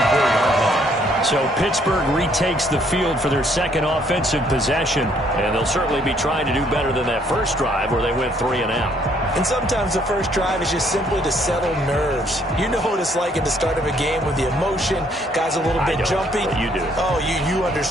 So Pittsburgh retakes the field for their second offensive possession, and they'll certainly be trying to do better than that first drive where they went 3 and out. And sometimes the first drive is just simply to settle nerves. You know what it's like at the start of a game with the emotion, guys a little bit jumpy. But you do. Oh, you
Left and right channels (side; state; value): both; normal; correlation 0.66